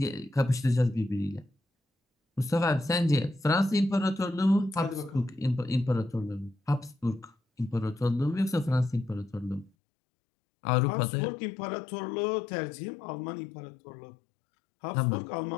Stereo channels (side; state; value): right; drops out; at 9.7 s